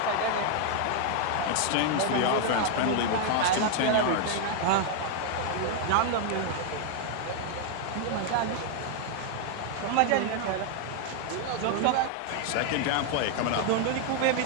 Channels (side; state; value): both; different; correlation 0.00